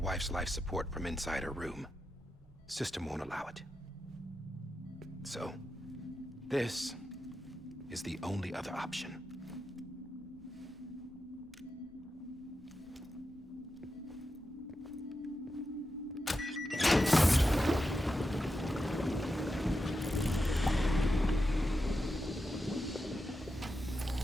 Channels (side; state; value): both; normal; correlation 0.89